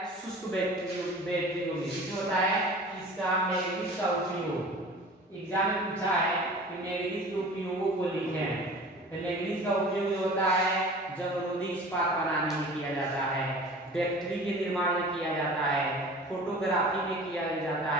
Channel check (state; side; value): normal; both; correlation 0.41